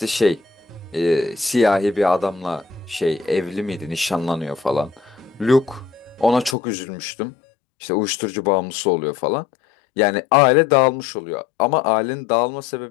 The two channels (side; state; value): right; drops out; at 6.6 s